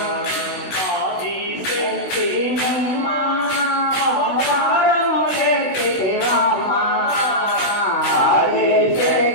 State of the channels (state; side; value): late; right; 16 ms